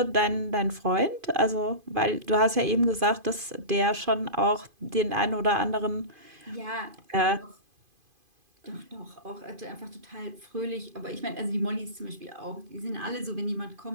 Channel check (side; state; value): left; late; 2.5 ms